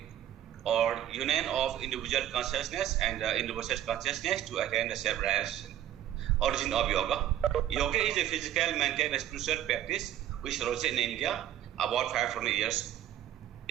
or union of individual consciousness and universal consciousness to attain the self-realization. Origin of yoga. Yoga is a physical, mental, and spiritual practice which arose in India about 500 years.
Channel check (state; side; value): quieter; left; 11.7 dB